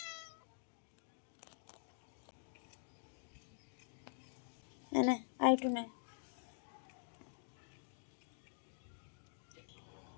নে আর একটু নে,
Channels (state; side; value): silent; right; digital silence